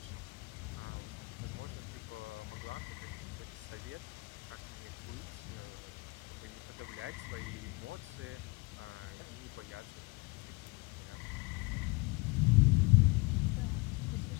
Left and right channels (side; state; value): right; quieter; 25.8 dB